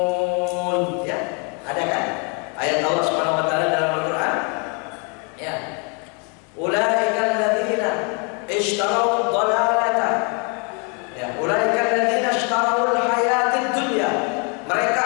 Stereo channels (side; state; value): right; quieter; 35.4 dB